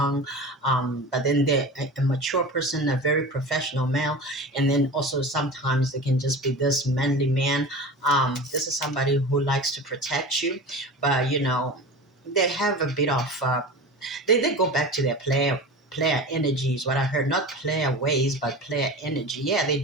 but then they're a mature person, a very professional male, and then also sometimes they can just be this manly man. This is somebody who likes to protect you, but they have a bit of they go back to their player energy is what I heard. Not player ways, but player energy. Yeah, they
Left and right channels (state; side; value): normal; both; correlation 0.32